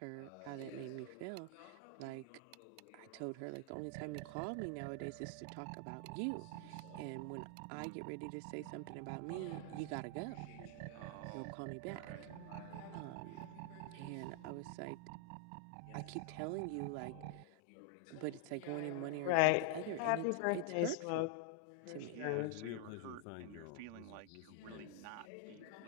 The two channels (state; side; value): different; both; correlation 0.00